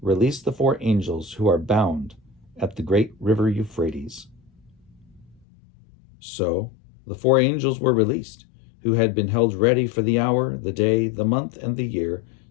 "Release the 4 angels who are bound at the great river Euphrates." So the 4 angels were released, who had been held ready for the hour, the day, the month, and the year,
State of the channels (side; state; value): right; drops out; at 5.4 s